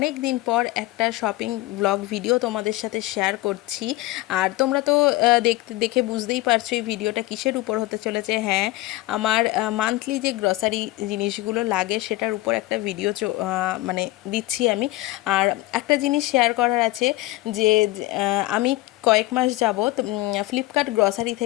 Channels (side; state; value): right; quieter; 18.5 dB